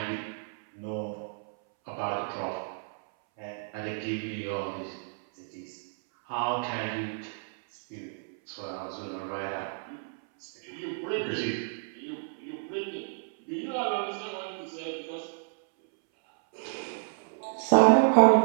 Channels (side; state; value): left; silent; 58 dB below the other